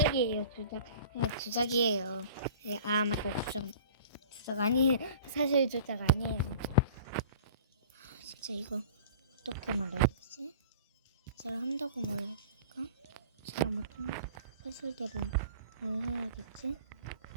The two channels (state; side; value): inverted; both; correlation -0.43